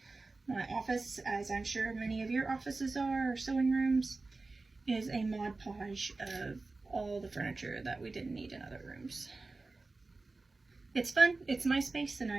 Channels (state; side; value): quieter; left; 3.5 dB